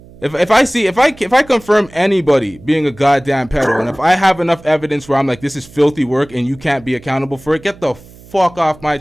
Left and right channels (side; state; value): right; noise; hum, 22 dB below the sound